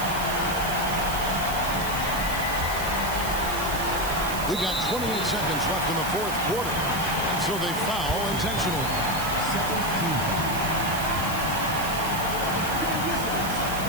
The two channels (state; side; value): noise; right; hiss, 8 dB below the sound